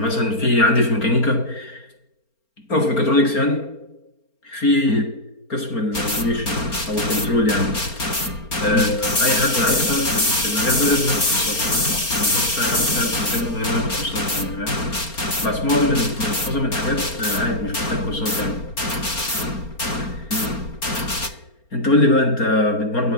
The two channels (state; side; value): late; right; 4.3 ms